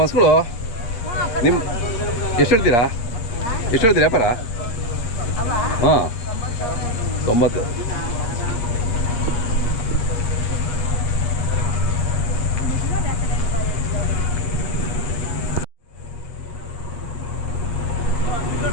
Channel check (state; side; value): late; right; 8.5 ms